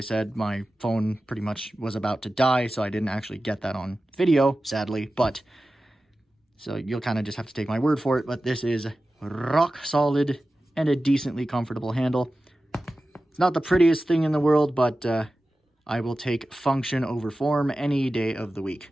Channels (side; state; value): both; normal; correlation 0.95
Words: my phone pretty much was about to die, so I didn't actually get that on video, sadly, but so you'll kind of just have to take my word for it, but this is rock solid and a decently comfortable handle. It's not the prettiest thing in the world, but I will take function over form any day of the week.